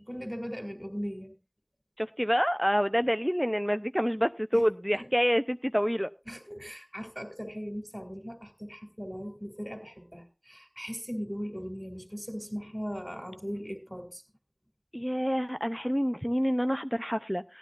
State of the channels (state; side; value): identical; both; correlation 1.00